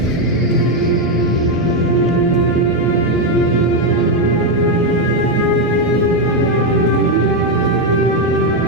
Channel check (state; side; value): normal; both; correlation 0.05